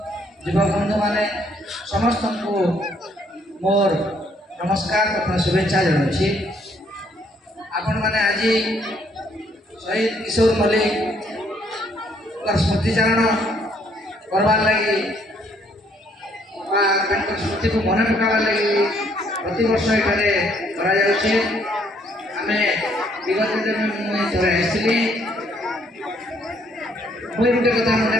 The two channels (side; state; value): both; normal; correlation 0.67